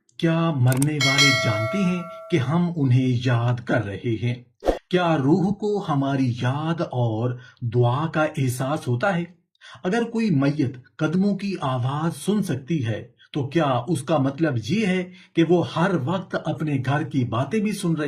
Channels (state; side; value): identical; both; correlation 1.00